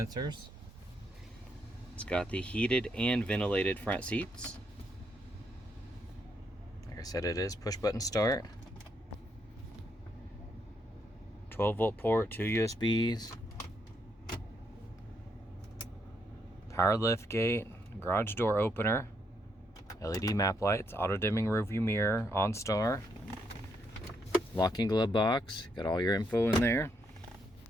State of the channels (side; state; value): both; normal; correlation 0.77